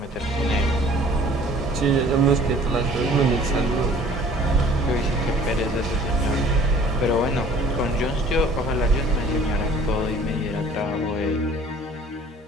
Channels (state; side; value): normal; both; correlation 0.52